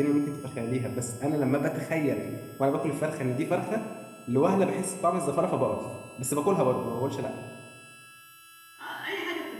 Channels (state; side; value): identical; both; correlation 1.00